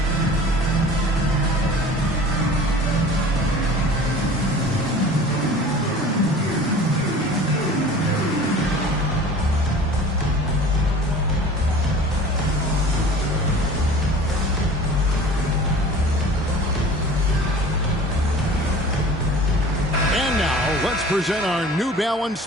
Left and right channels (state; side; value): normal; both; correlation 0.43